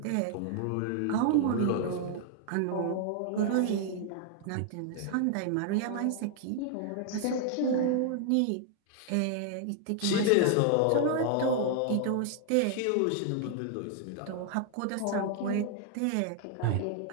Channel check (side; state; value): both; different; correlation 0.00